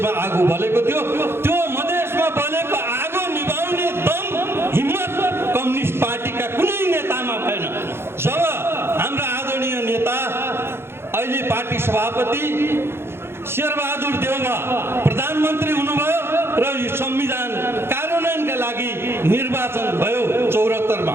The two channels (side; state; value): left; late; 0.12 ms